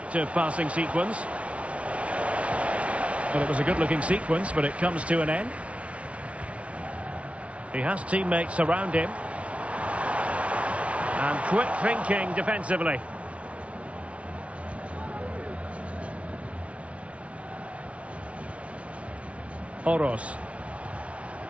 passing sequence. Well, it was a good-looking sequence, but it comes to an end. He has teammates around him. And quick thinking defensively. Oros.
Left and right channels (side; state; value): left; late; 0.063 ms